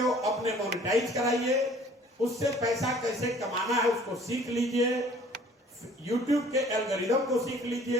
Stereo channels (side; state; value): both; normal; correlation 0.53